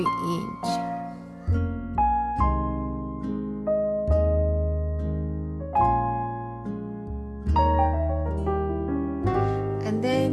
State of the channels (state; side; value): identical; both; correlation 1.00